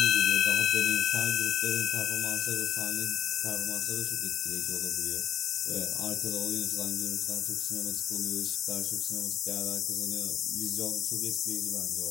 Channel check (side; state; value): right; quieter; 10.3 dB